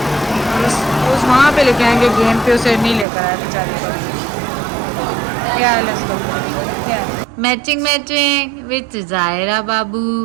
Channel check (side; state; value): left; drops out; at 3.1 s